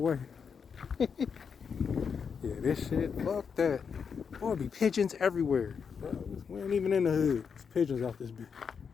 Yeah, this shit, fuck that. Boy, be pigeons everywhere. We ain't even in the hood. It's pigeons out this bitch.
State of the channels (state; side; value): quieter; right; 6.3 dB